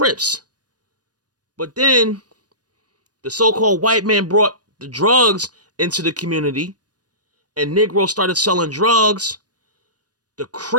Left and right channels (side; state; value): left; late; 0.69 ms